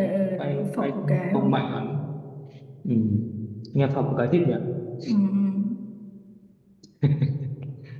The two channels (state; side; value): identical; both; correlation 1.00